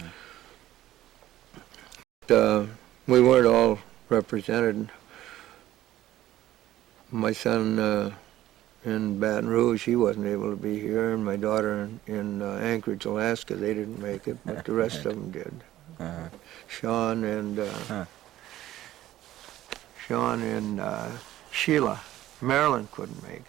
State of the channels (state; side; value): quieter; left; 14.1 dB